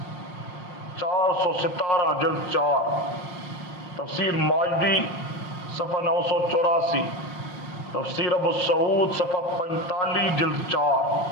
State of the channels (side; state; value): right; late; 5.6 ms